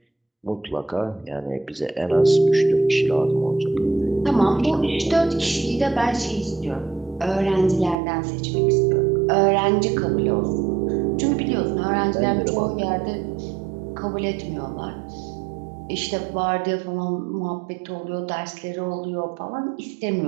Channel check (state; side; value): drops out; left; at 8.0 s